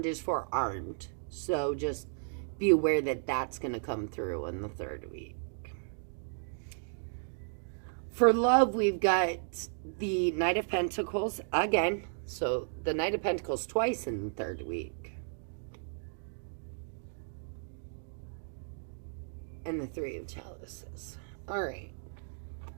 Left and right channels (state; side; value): silent; left; digital silence